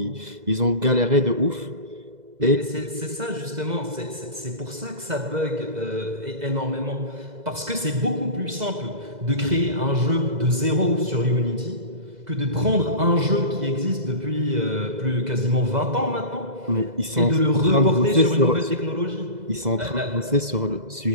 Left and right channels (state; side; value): late; left; 2.0 ms